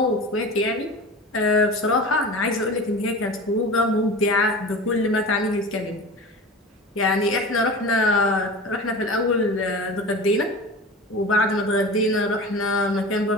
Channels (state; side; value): normal; both; correlation 0.33